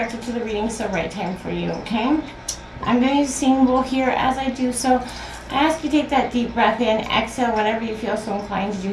to the reading, it's the right time for you, okay? I'm going to use a singing bowl here. As I do so, I ask you to take that deep breath in, exhale whenever you feel so inclined to do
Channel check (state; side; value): identical; both; correlation 1.00